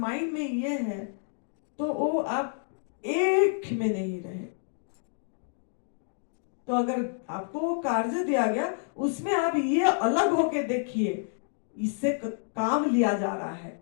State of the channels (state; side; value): silent; right; digital silence